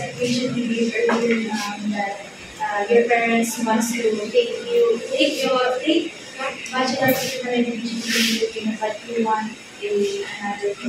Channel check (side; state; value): both; identical; correlation 1.00